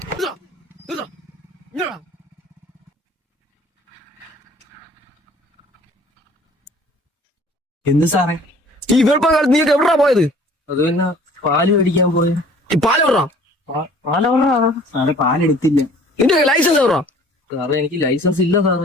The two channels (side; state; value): both; normal; correlation 0.52